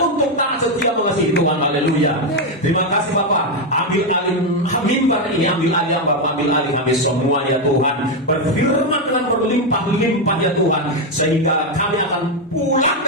taat setia mengasihi Tuhan. Haleluya. Terima kasih Bapa. Ambil alih mimbar ini, ambil alih Bapa, ambil alih kami semua ya Tuhan. Berfirman dengan berlimpah-limpah ya Tuhan, sehingga kami akan pulang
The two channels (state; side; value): normal; both; correlation 0.05